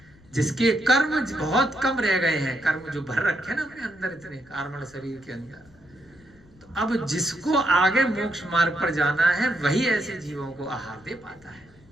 जिसके कर्म बहुत कम रह गए हैं, कर्म जो भर रखे ना अपने अंदर, इतने कार्मण शरीर के अंदर, तो अब जिसको आगे मोक्ष मार्ग पर जाना है वही ऐसे जीवों को आहार दे पाता है।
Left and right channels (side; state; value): left; noise; rumble, 27 dB below the sound